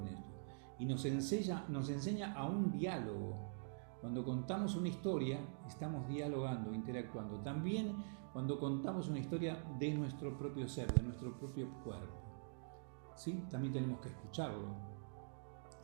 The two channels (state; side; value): silent; left; digital silence